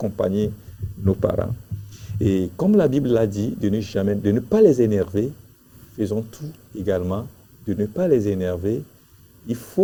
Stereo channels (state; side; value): identical; both; correlation 1.00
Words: nos parents. Et comme la Bible l'a dit, de ne pas les énerver, faisons tout également, de ne pas les énerver. Il